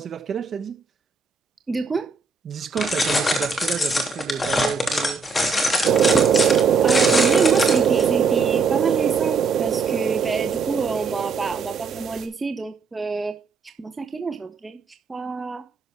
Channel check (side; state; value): left; quieter; 4.7 dB